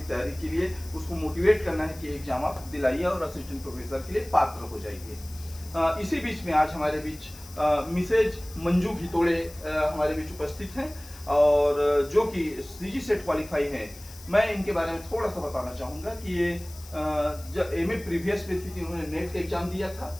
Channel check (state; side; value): noise; left; hiss, 19 dB below the sound